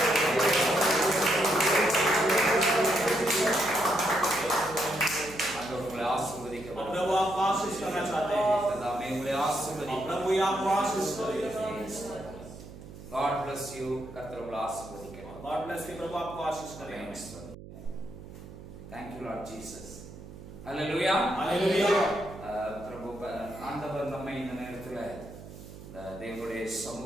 ஆண்டவர் உங்களை ஆசீர்வதிக்க और प्रभु आपको आशीष करना चाहते हैं, தாமே உங்களை और ஆசீர்வதிக்க. प्रभु ही आपको आशीष करेगा। God bless you. கர்த்தர் உங்களை ஆசீர்வதிக்க. God bless you, प्रभु आपको आशीष करेगा। Thank you Lord Jesus. Hallelujah. Hallelujah. பிரபு ஆண்டவர் நம்மை இந்த நேரத்துல தேவனுடைய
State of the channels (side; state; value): right; noise; hum, 15 dB below the sound